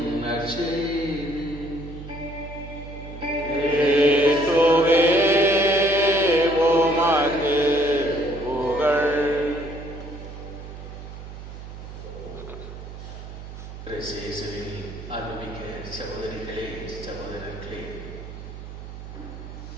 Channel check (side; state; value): right; noise; hum, 12 dB below the sound